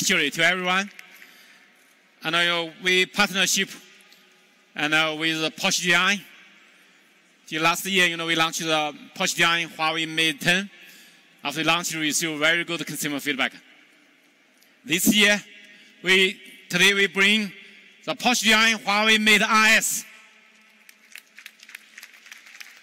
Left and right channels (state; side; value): identical; both; correlation 1.00